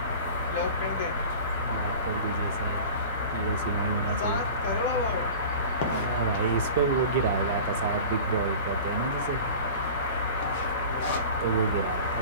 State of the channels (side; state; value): both; inverted; correlation -0.37